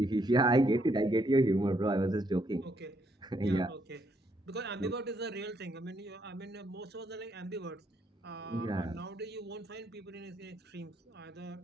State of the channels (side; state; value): both; normal; correlation 0.73